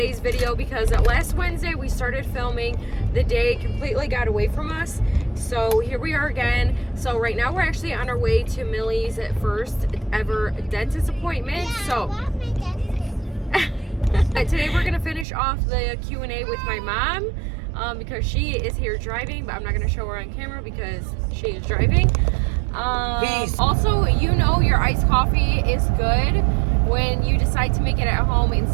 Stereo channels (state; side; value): drops out; left; at 15.2 s